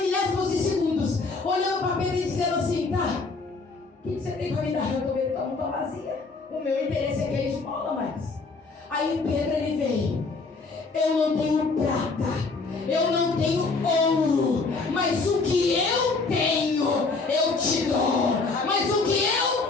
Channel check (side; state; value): right; quieter; 4.0 dB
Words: milésimos de segundos olhando para Pedro e dizendo assim: tá, o que você tem para me dar? Eu estou vendo que não está vazia. O meu interesse é que ele esmola mais. Aí Pedro ele veio: eu não tenho prata, eu não tenho ouro, mas o que eu tenho, eu te dou. Mas o que